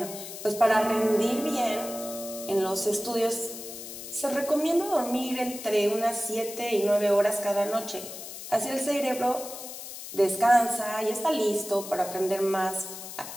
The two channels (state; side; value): noise; left; hiss, 11 dB below the sound